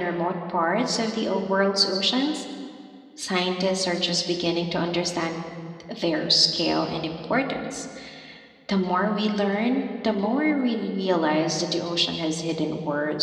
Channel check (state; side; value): identical; both; correlation 1.00